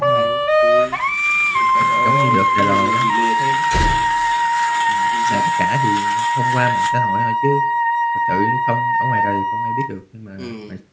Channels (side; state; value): both; identical; correlation 1.00